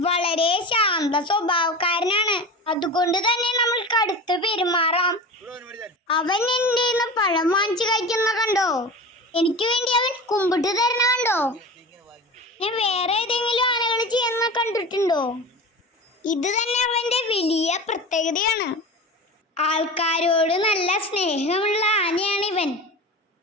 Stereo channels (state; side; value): normal; both; correlation 0.31